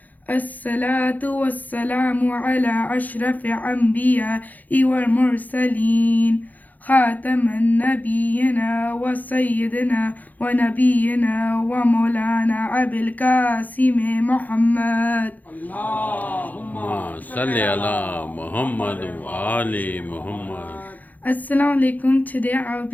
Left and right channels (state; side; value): late; right; 0.081 ms